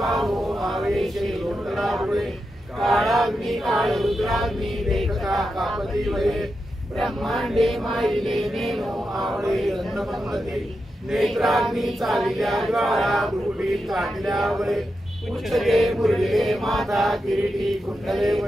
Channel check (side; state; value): both; normal; correlation 0.88